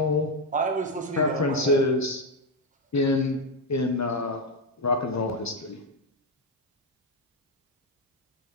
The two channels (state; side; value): normal; both; correlation 0.05